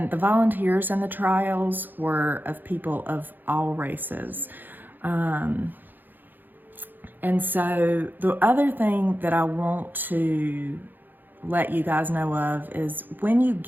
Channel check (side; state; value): left; late; 0.089 ms